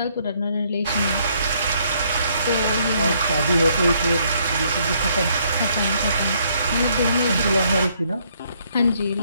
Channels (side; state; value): both; inverted; correlation -0.69